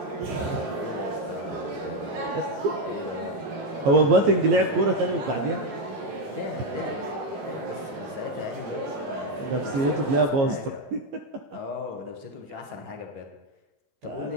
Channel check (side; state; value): left; late; 15 ms